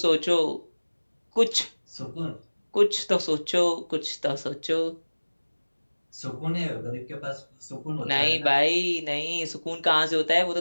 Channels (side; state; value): both; inverted; correlation -1.00